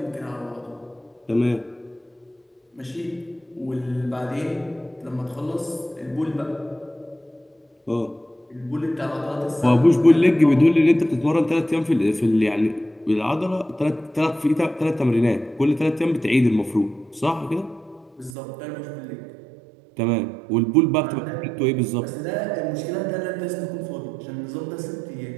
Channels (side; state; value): left; drops out; at 18.4 s